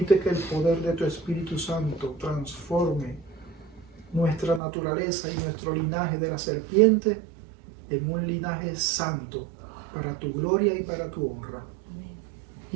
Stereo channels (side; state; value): left; drops out; at 4.6 s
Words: que el poder de tu Espíritu Santo transforme nuestra naturaleza y nuestro linaje de la serpiente en un linaje santo para tu gloria y para tu honra.